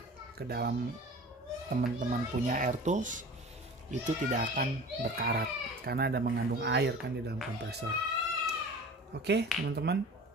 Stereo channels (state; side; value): normal; both; correlation 0.40